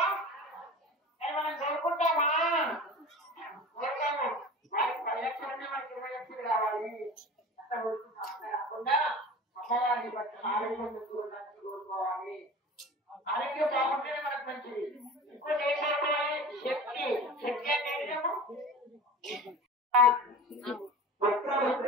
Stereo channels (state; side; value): normal; both; correlation 0.36